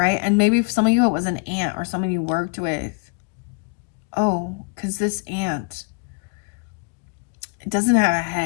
And maybe for some of you it was an aunt or someone you worked with. Oh, because this aunt, it doesn't have a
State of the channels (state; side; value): quieter; right; 33.1 dB